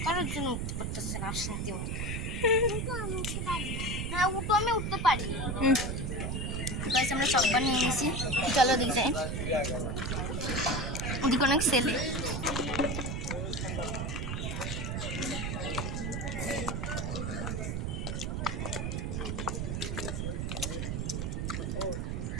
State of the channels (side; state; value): right; noise; rumble, 1 dB below the sound